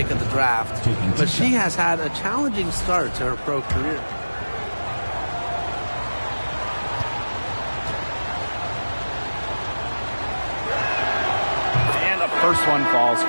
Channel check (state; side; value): inverted; both; correlation -1.00